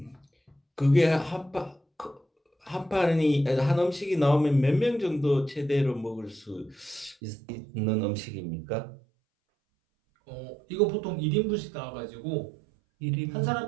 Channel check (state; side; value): drops out; left; at 7.2 s